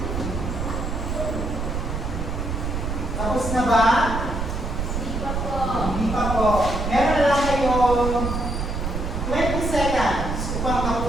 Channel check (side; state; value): right; noise; rumble, 3 dB below the sound